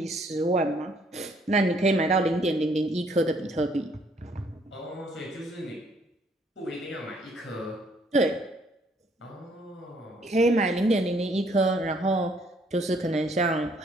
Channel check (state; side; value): normal; both; correlation 0.65